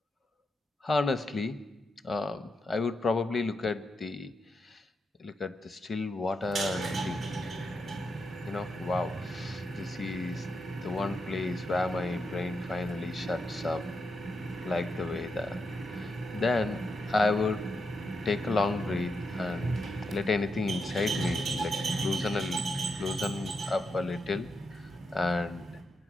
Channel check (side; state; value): both; normal; correlation 0.84